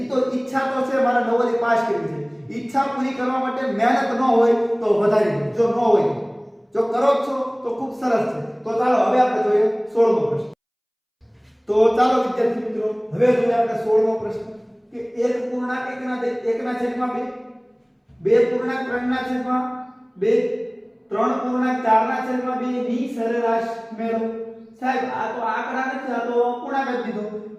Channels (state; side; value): identical; both; correlation 1.00